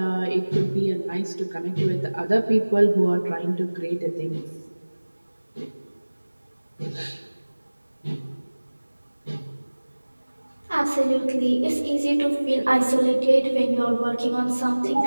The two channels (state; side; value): inverted; both; correlation -1.00